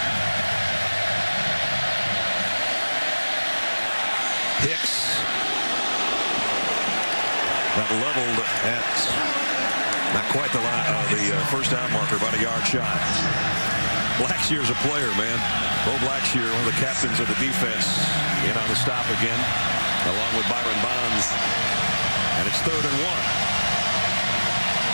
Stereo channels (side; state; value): both; inverted; correlation -1.00